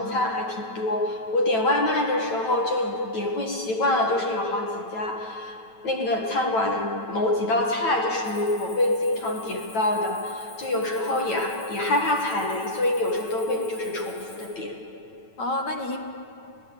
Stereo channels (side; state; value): right; late; 9.1 ms